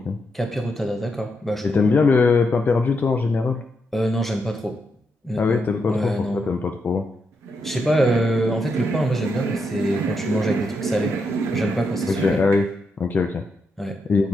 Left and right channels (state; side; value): normal; both; correlation 0.82